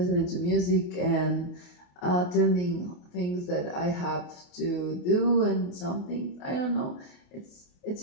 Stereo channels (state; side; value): late; right; 28 ms